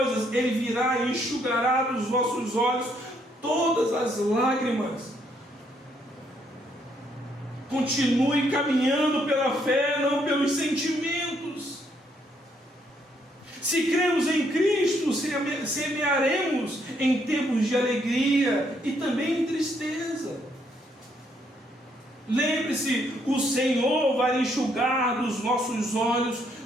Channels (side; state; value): both; normal; correlation 0.71